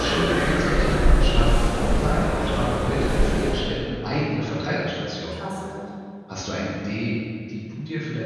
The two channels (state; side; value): identical; both; correlation 1.00